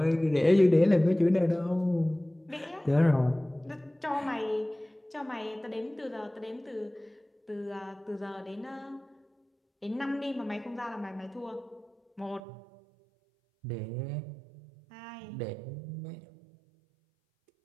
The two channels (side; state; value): left; drops out; at 12.4 s